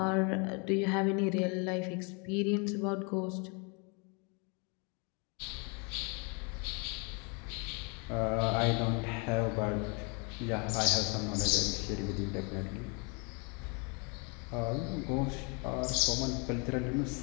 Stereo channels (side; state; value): right; quieter; 33.6 dB